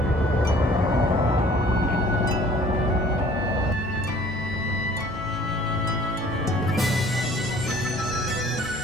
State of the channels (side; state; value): both; normal; correlation 0.53